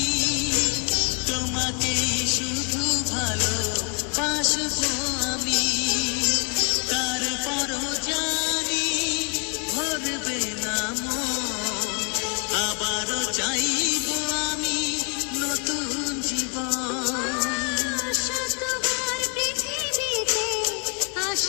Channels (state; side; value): quieter; right; 35.8 dB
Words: তোমাকেই শুধু ভালো বাসবো আমি। তারপরও